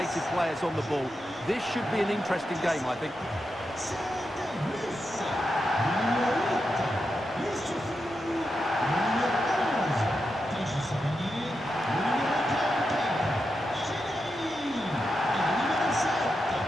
players on the ball. This should be an interesting game, I think.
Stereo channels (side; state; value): both; normal; correlation 0.87